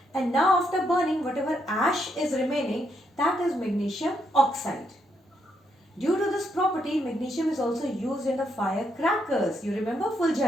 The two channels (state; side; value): normal; both; correlation 0.77